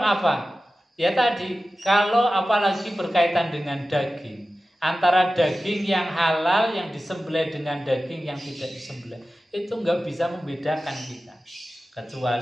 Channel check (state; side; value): normal; both; correlation 0.95